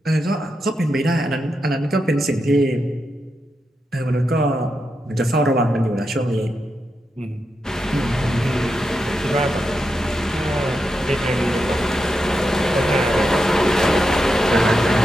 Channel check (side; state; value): both; normal; correlation 0.86